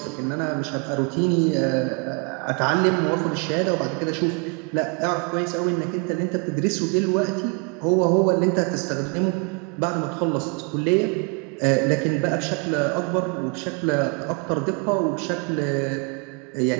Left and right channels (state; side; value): quieter; left; 33.1 dB